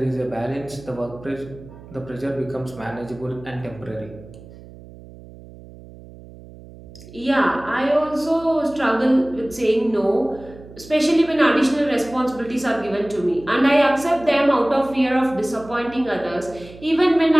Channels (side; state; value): right; noise; hum, 19 dB below the sound